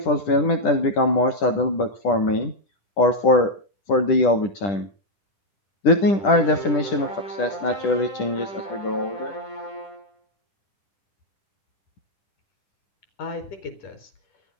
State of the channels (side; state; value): right; late; 10 ms